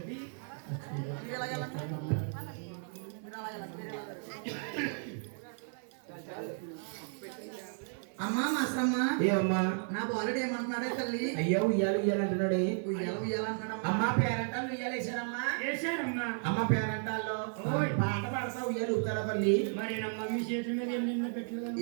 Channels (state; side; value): silent; left; 55 dB below the other